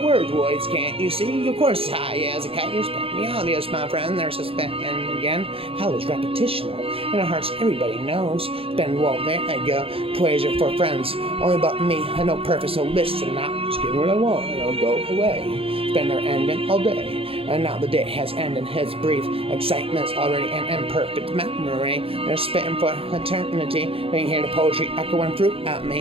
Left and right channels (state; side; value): late; left; 0.27 ms